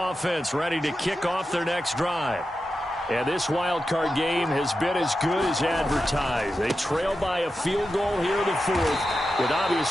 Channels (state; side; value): normal; both; correlation 0.90